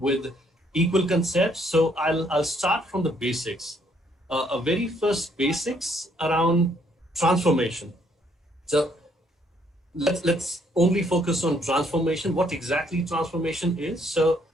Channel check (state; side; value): normal; both; correlation 0.68